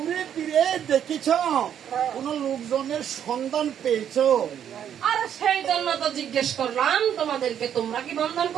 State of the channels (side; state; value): left; quieter; 9.4 dB